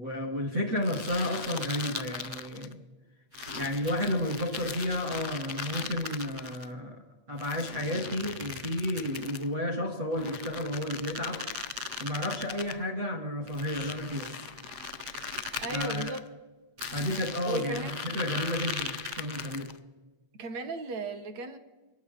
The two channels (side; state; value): left; late; 8.4 ms